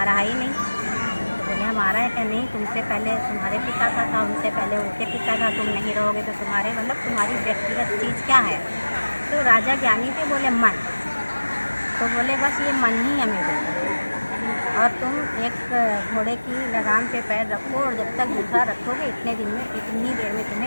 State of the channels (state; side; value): inverted; both; correlation -1.00